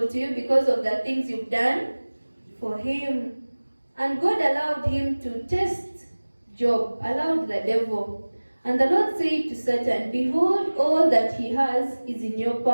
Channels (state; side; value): inverted; both; correlation -1.00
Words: to you because of the things you've done for him. And God allowed him to test Job, allowed the devil. And the Lord said to Satan, behold, all that he has is in your